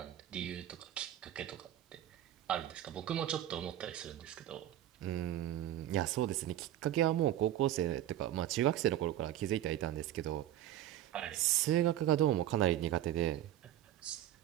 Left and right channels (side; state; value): left; quieter; 12.5 dB